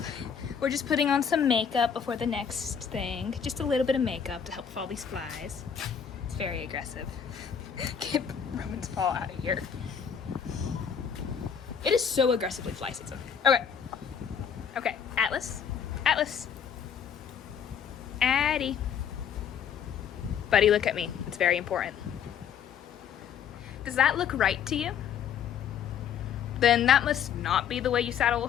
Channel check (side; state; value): right; quieter; 7.8 dB